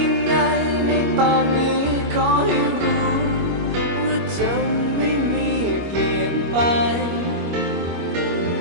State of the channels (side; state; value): left; late; 25 ms